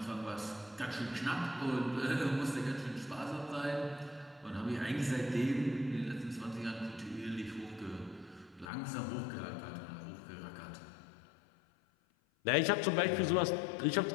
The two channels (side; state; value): right; drops out; at 8.7 s